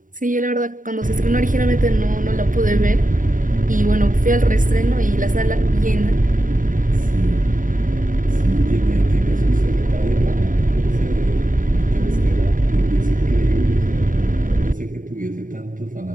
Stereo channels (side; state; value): left; late; 0.39 ms